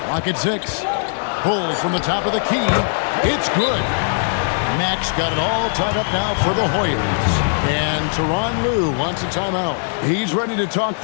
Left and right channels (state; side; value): silent; right; digital silence